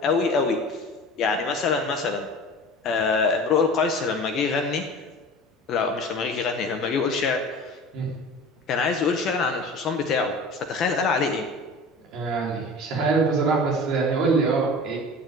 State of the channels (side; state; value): both; normal; correlation 0.37